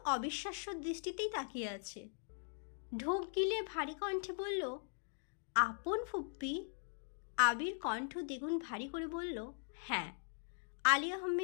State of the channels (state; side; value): silent; right; digital silence